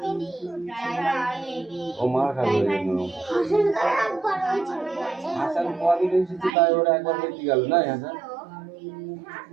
ও মার খাবে হাসান কদিন এসেছে তাই ওরা একবার বেঁচে গেল না হাসান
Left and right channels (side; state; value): left; drops out; at 6.5 s